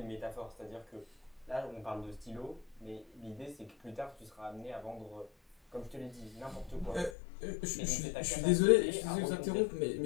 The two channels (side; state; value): right; drops out; at 7.1 s